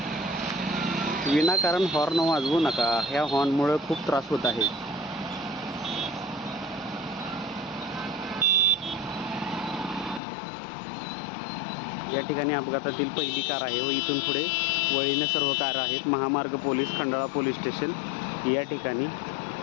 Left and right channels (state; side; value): drops out; right; at 10.2 s